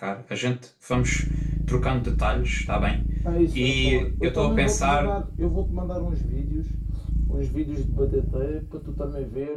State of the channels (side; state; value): both; identical; correlation 1.00